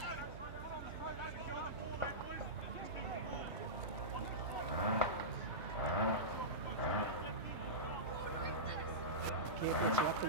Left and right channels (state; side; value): noise; right; hum, 13 dB below the sound